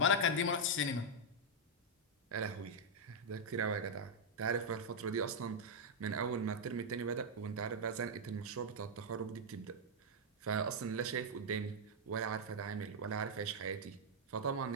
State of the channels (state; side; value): normal; both; correlation -0.03